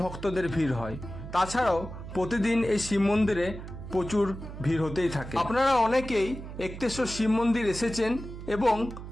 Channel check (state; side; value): noise; right; hum, 11 dB below the sound